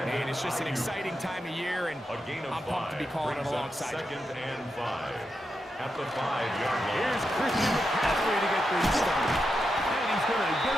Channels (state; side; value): normal; both; correlation 0.86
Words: And it's just an exciting time of year, and I'm pumped to be calling it alongside you. Second and 5 at the 5-yard line. Here's Christian McCaffrey to get things started. And he's going to get